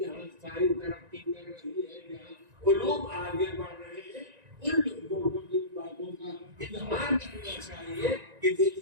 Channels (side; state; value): left; late; 1.9 ms